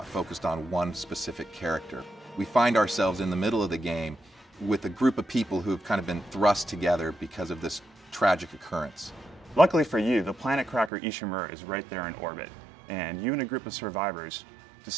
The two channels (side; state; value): left; drops out; at 10.9 s